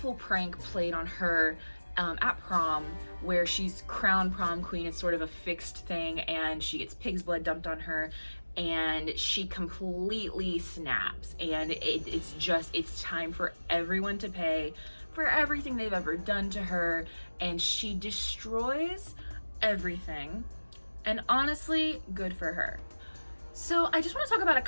prank played on her at prom, where she's crowned prom queen. It's sort of a fixed thing, and she gets pig's blood dumped on her, and she completely snaps, and it's time for everyone to pay for everything they've ever done to her, and she destroys everything. And honestly, good for her. So I just want to talk about a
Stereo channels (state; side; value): inverted; both; correlation -1.00